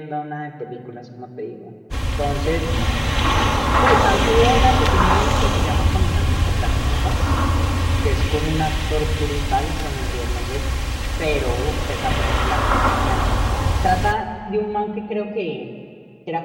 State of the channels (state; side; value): identical; both; correlation 1.00